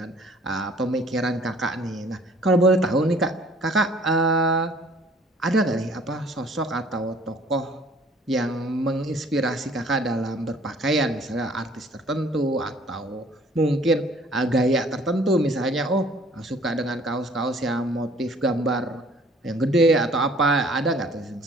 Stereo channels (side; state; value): both; normal; correlation 0.55